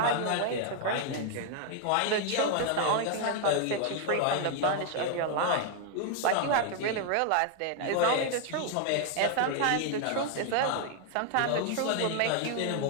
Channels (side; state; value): both; different; correlation 0.00